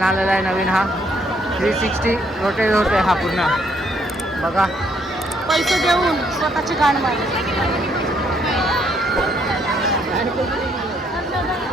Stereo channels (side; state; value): both; normal; correlation 0.70